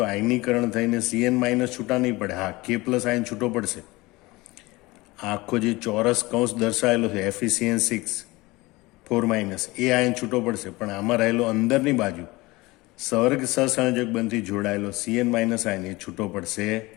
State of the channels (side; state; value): right; quieter; 21.7 dB